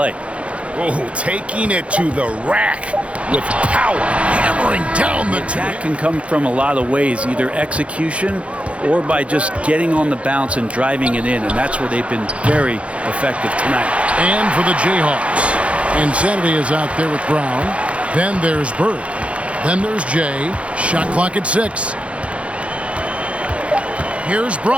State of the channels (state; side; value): late; left; 0.062 ms